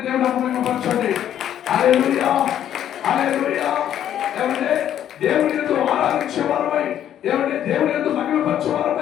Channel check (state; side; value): quieter; right; 10.6 dB